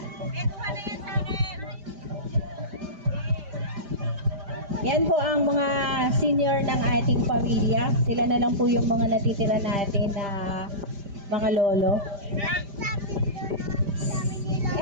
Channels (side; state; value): left; late; 5.0 ms